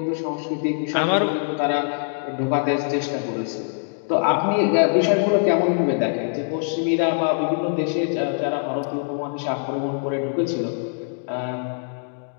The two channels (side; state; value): right; silent; digital silence